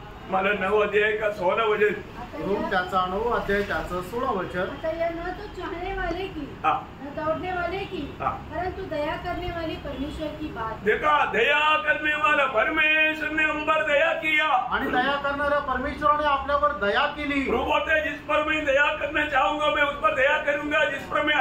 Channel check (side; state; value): both; identical; correlation 1.00